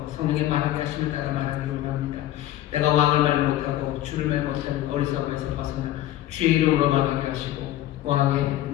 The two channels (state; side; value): quieter; right; 13.8 dB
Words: 성령의 말하게 하심을 따라 말하기를 원합니다. 내가 왕을 말 못하고 주를 말 못하는 어리석음에서 벗어나 주의 이름으로 말하게 하시고 왕의